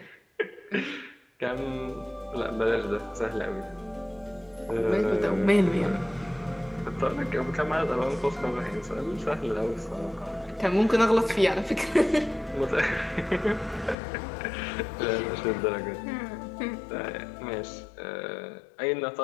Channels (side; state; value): right; drops out; at 14.0 s